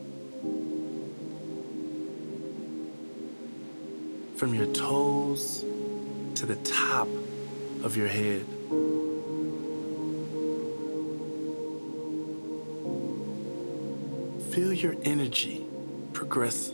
from your toes to the top of your head. Feel your energy progress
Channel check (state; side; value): inverted; both; correlation -1.00